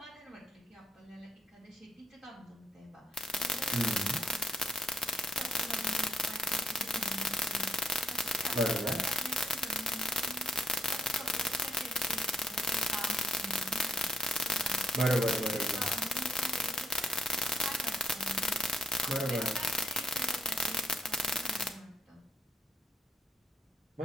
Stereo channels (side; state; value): both; normal; correlation 0.75